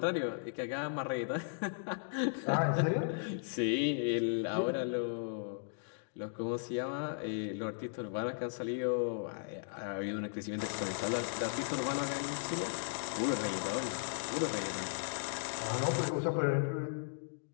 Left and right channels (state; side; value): silent; right; digital silence